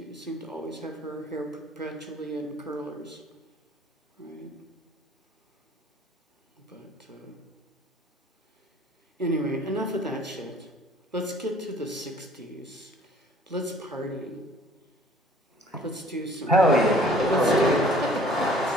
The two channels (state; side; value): normal; both; correlation 0.53